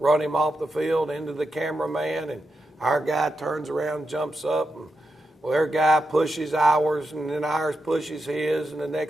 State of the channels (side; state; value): both; normal; correlation 0.87